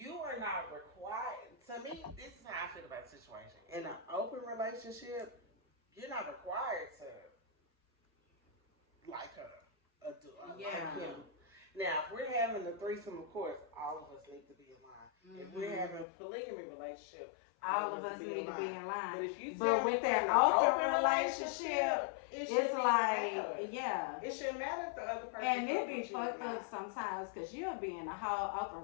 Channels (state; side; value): drops out; right; at 16.1 s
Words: are not required, to me, this is how I feel about the situation. In an open relationship, you're not required to like her or like him. Now, if we're having a threesome, of course, all of us need to be in line. If we're having a polygamy relationship, all of us need to be in line. But if you But tell me with you're that in an open relationship, it it's shouldn't even like, matter. yeah. It shouldn't matter if the other person And it fuck be with you or fucked not. up sometimes because you'll be in a whole open